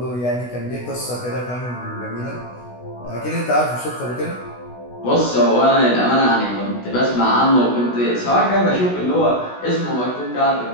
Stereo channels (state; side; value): late; right; 16 ms